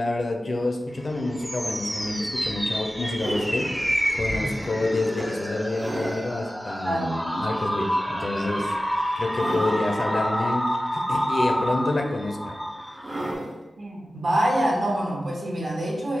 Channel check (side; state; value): both; normal; correlation 0.95